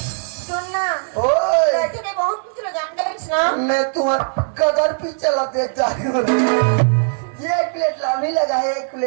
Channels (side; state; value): left; silent; digital silence